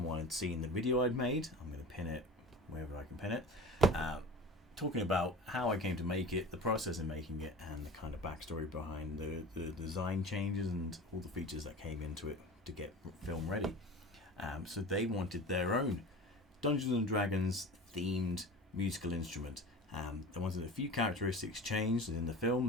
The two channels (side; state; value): both; normal; correlation 0.35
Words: had seen the video I'd made. I'm going to pin it wherever I can pin it, talking about how I came to make it, the process in making it, and the kind of backstory behind the design changes and all the features that came into it to get film ready. So they wanted their own Dungeons and Dragons themed musical instrument. They wanted a few characteristics changed in the film.